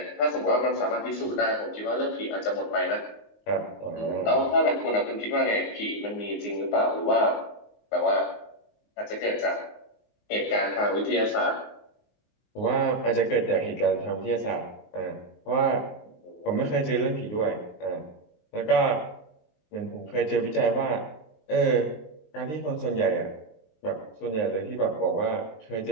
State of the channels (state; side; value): late; right; 19 ms